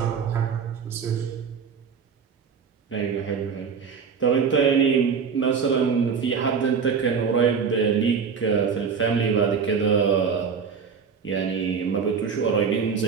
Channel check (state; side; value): quieter; left; 6.1 dB